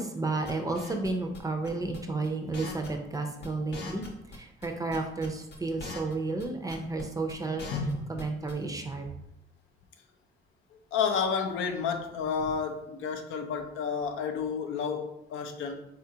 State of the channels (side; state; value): both; normal; correlation 0.39